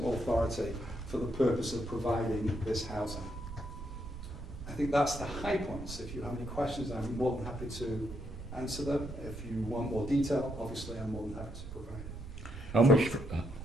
Authority for the purpose of providing this housing. I think that's the high points. If you have any questions, I'm more than happy to answer them. If you want more detail, obviously I'm more than happy to provide it. How much,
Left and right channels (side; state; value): right; noise; rumble, 11 dB below the sound